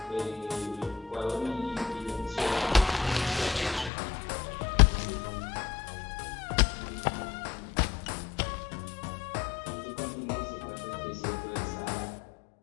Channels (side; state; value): right; drops out; at 3.9 s